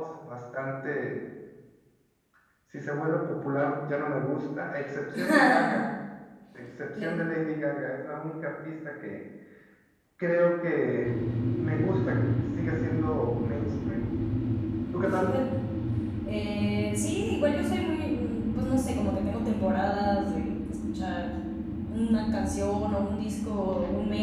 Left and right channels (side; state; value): both; identical; correlation 1.00